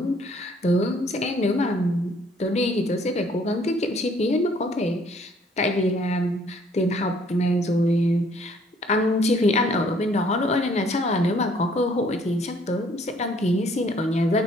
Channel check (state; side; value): normal; both; correlation 0.62